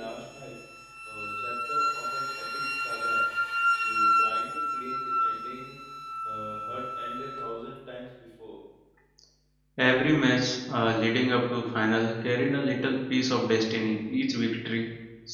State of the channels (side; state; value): both; identical; correlation 1.00